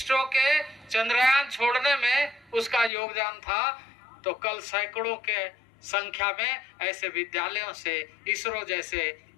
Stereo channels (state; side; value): drops out; right; at 2.9 s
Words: के चंद्रयान छोड़ने में उसका योगदान था। तो कल सैकड़ों के संख्या में ऐसे विद्यालयों से, इसरो जैसे